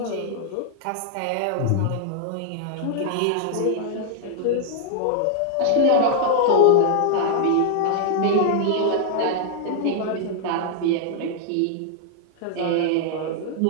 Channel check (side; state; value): both; different; correlation 0.00